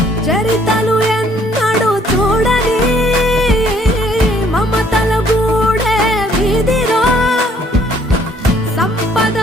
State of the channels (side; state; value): both; normal; correlation 0.63